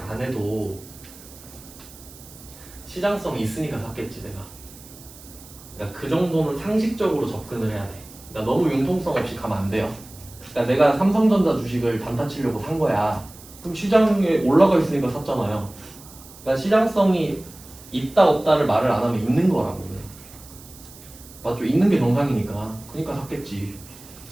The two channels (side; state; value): right; noise; hiss, 20 dB below the sound